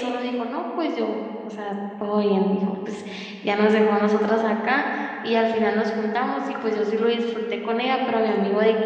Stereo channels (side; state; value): both; identical; correlation 1.00